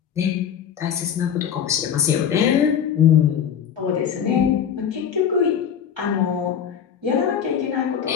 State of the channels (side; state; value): right; quieter; 8.4 dB